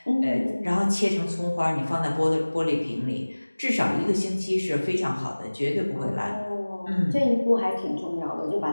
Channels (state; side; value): inverted; both; correlation -1.00